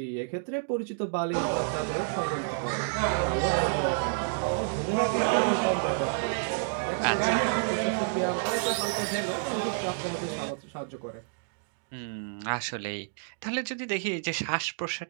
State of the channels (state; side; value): silent; left; digital silence